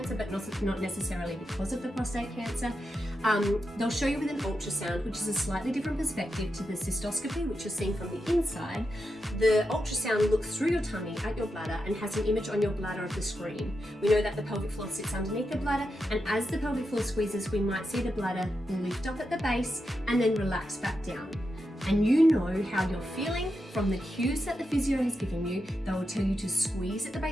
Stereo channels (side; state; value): both; normal; correlation 0.87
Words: but not necessarily because of the prostate cancer. They'll show you with an ultrasound, which is a slightly different perspective to the cystoscopy, which you're seeing from the inside. The ultrasound looks through your tummy at your bladder and has an image on your bladder of the screen. We know that the pelvic floor sits underneath the bladder, and as the pelvic floor squeezes, we might see the bladder lift up at the base and then relax back down. And you know how you're feeling from the cues that the physio has given you. They will tell you to squeeze at the